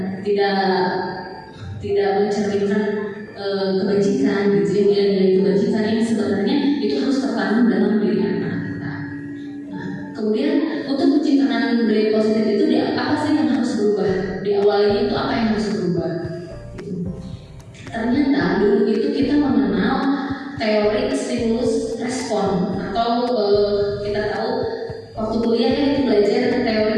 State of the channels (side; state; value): both; identical; correlation 1.00